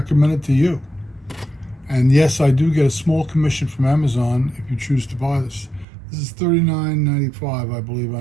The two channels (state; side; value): drops out; left; at 5.9 s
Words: it to you. And yes, I do get a small commission from Amazon if you choose to buy this. This is $39.95, I believe,